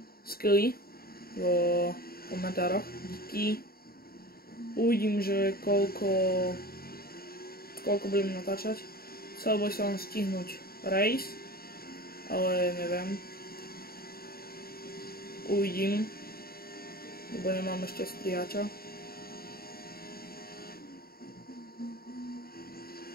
skilly vo komentároch. Díky. Uvidím, že koľko budem natáčať. Chcel by som stihnúť race, ale neviem. Uvidím, lebo nemám ešte strihača.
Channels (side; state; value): right; late; 0.44 ms